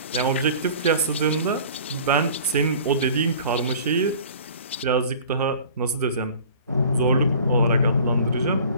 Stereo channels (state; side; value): inverted; both; correlation -0.45